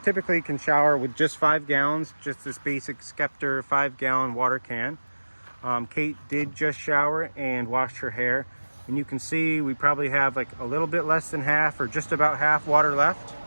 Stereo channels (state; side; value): inverted; both; correlation -1.00